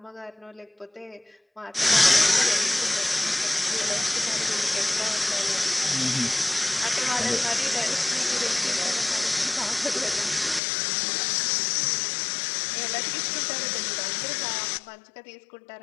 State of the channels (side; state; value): right; drops out; at 10.6 s